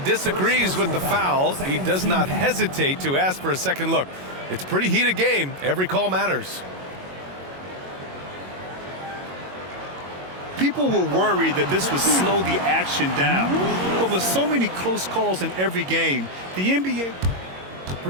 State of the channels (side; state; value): left; late; 22 ms